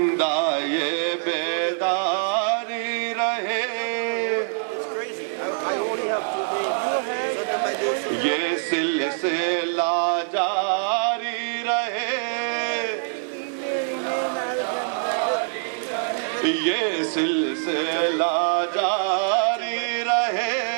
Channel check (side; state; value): left; silent; digital silence